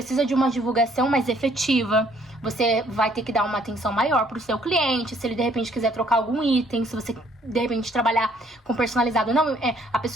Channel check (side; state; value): both; normal; correlation 0.63